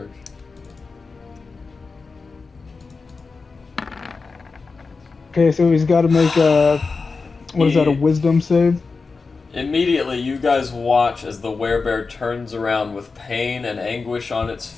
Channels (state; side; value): quieter; right; 4.4 dB